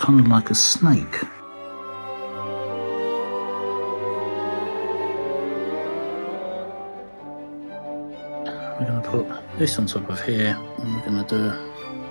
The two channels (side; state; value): both; inverted; correlation -1.00